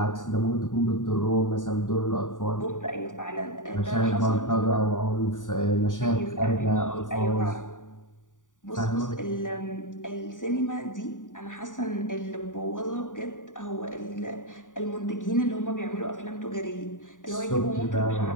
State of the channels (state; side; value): late; right; 0.87 ms